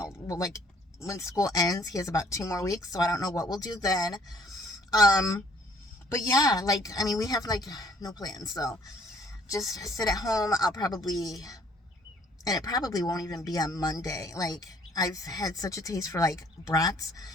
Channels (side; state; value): both; normal; correlation 0.61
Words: like when school ends. He has about 2 more weeks, so I don't know what we'll do then. Um, but yeah, like I mean, we have like no plans, so just sit at home. And it probably won't even be on Monday. Like I've had such a taste for like brats,